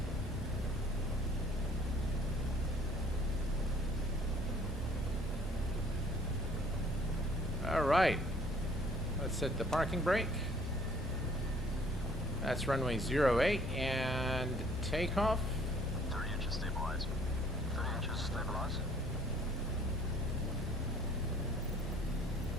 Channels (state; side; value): normal; both; correlation 0.57